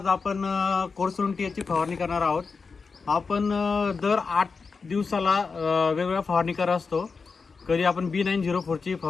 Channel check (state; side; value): quieter; right; 4.8 dB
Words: आपण कोरसुंटीची फवारणी करणार आहोत. आपण दर 8 दिवसाला वेगवेगळ्या फवारणी करत असतो. कधी आपण B904ची